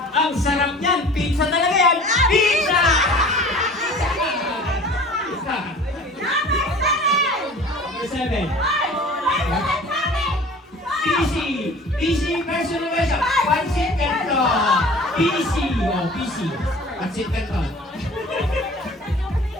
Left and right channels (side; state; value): both; normal; correlation 0.44